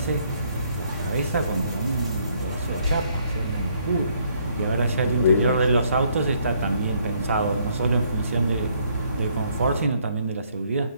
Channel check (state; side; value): inverted; both; correlation -0.68